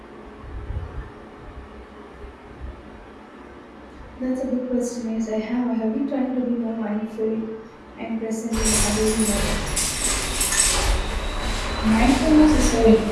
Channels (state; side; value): identical; both; correlation 1.00